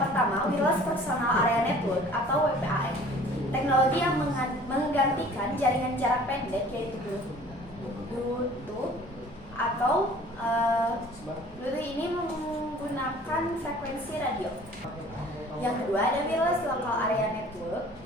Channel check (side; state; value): both; normal; correlation 0.49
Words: pertama, Wireless Personal Area Network atau WPAN. Teknologi yang menggantikan jaringan jarak pendek yaitu Bluetooth atau Bluetooth ini menggunakan frekuensi radio. Yang kedua ada Wireless Local Area Network